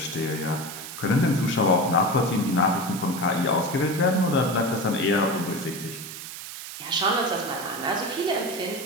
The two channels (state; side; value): noise; right; hiss, 10 dB below the sound